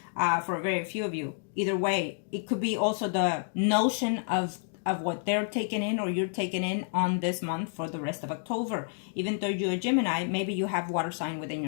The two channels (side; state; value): right; silent; digital silence